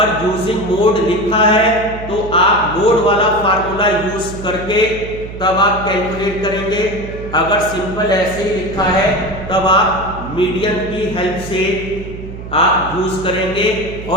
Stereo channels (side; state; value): right; noise; hum, 11 dB below the sound